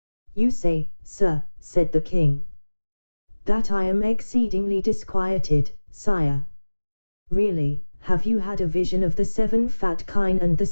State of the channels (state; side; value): inverted; both; correlation -1.00